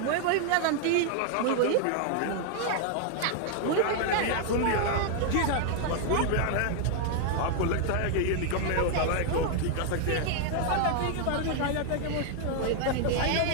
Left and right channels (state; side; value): different; both; correlation 0.00